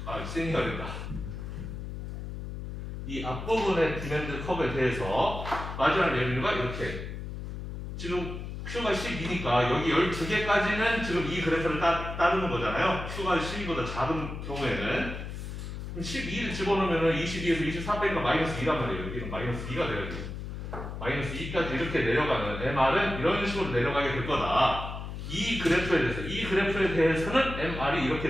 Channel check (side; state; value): left; noise; hum, 7 dB below the sound